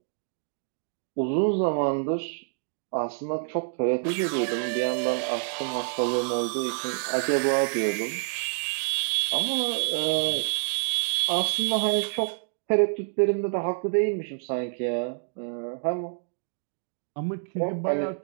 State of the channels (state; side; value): silent; left; digital silence